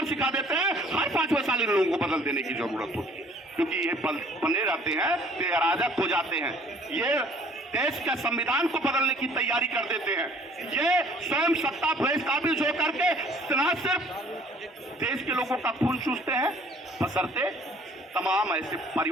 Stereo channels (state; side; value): normal; both; correlation 0.55